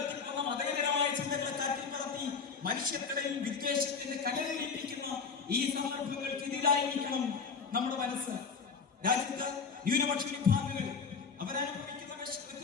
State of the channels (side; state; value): right; quieter; 5.5 dB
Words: മതേതരമായ ചിന്തകളെ കാറ്റിൽ പറത്തി മനുഷ്യർക്കിടയിൽ വിദ്വേഷത്തിന്റെ കനലിപ്പിക്കുന്ന ഈ സന്ദർഭങ്ങൾക്കെതിരായിരിക്കണം നമ്മുടെ മനസ്സ്. രാജ്യത്ത് ന്യൂനപക്ഷ വിഭാഗങ്ങൾ അവരനുഭവിക്കുന്ന